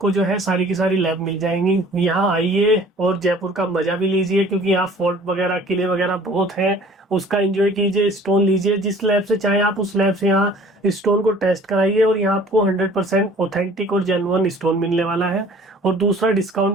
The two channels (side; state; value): both; normal; correlation 0.50